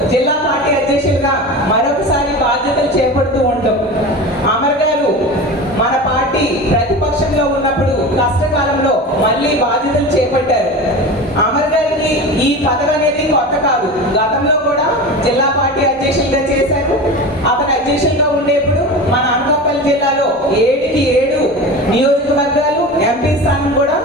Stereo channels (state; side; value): normal; both; correlation 0.30